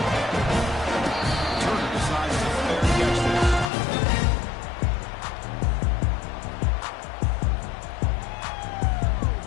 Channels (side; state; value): right; drops out; at 3.7 s